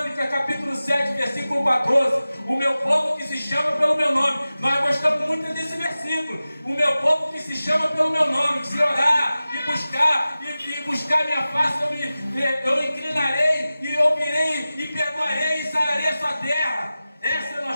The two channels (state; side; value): inverted; both; correlation -0.96